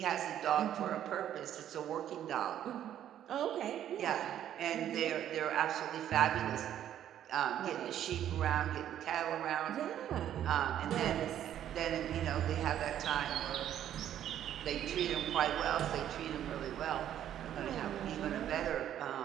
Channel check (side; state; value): left; quieter; 10.9 dB